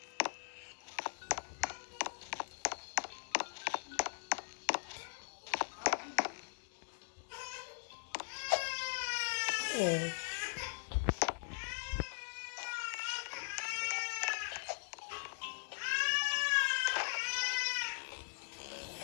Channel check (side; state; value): right; silent; digital silence